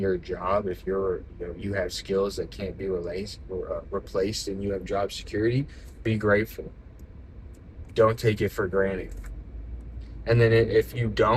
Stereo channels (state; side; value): identical; both; correlation 1.00